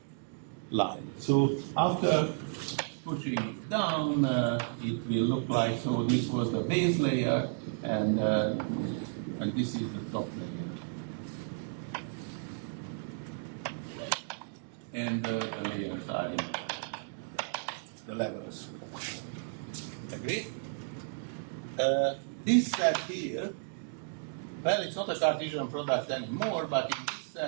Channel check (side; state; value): left; silent; digital silence